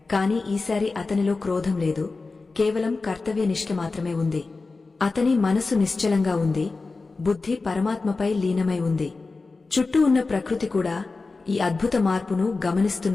కాని ఈసారి అతనిలో క్రోధం లేదు, కేవలం కర్తవ్యనిష్ఠ మాత్రమే ఉంది. అతని మనసు నిశ్చలంగా ఉంది, బుద్ధి పరమాత్మపై లీనమై ఉంది. చుట్టూ ఉన్న ప్రకృతి కూడా ఈ అద్భుత మార్పును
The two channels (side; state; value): right; quieter; 3.8 dB